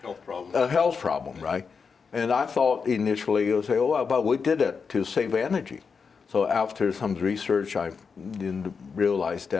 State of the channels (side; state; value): right; quieter; 5.5 dB